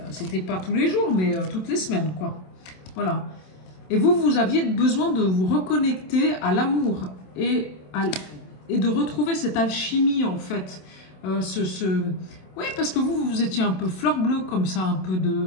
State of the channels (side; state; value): right; late; 27 ms